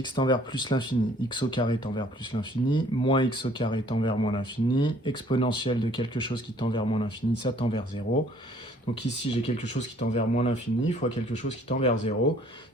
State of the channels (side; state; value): both; normal; correlation 0.58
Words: tend vers plus l'infini, x au carré tend vers plus l'infini, moins x au carré tend vers moins l'infini, exponentielle de quelque chose qui tend vers moins l'infini, ça tend vers 0. Donc ici, j'ai quelque chose qui tend vers moins l'infini fois quelque chose qui tend vers 0.